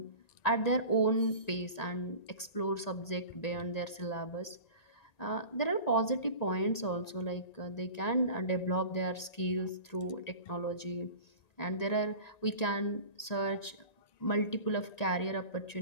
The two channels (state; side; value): late; right; 1.9 ms